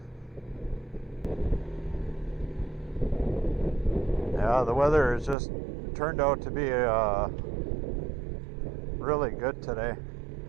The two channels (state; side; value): drops out; left; at 5.4 s